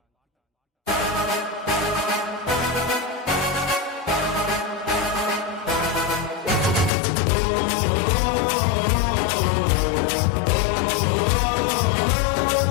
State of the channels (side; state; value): right; drops out; at 6.9 s